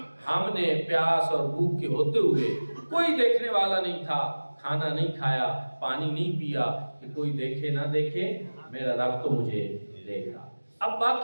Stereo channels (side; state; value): both; inverted; correlation -1.00